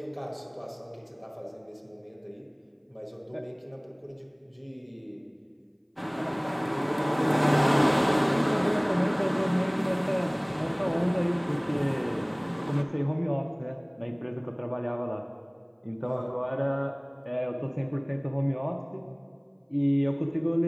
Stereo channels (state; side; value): identical; both; correlation 1.00